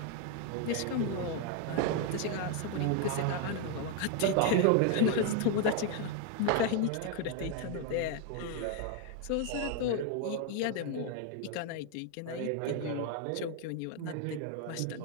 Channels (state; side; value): different; both; correlation 0.00